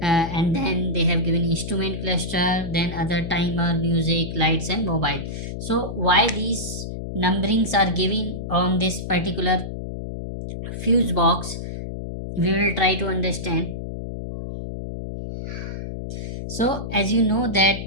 and then they have given instrument cluster, then other timer, music, lights and mobile. So why these numberings are given on this particular fuse box, we will try to understand. So as you know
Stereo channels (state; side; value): noise; left; hum, 7 dB below the sound